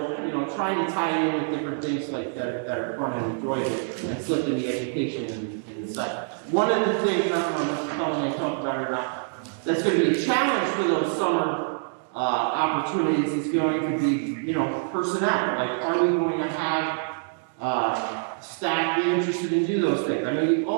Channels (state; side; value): silent; left; digital silence